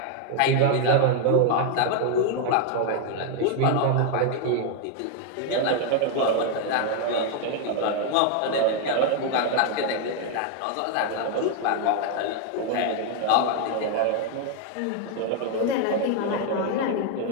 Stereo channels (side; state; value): both; different; correlation 0.01